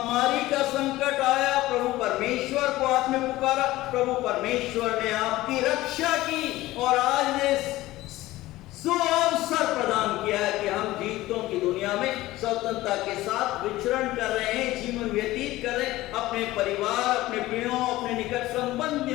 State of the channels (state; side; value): quieter; right; 17.2 dB